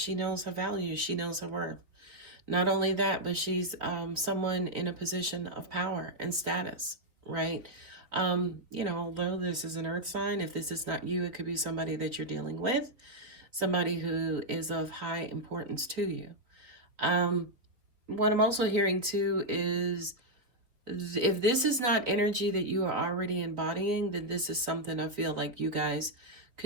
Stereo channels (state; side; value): late; left; 3.7 ms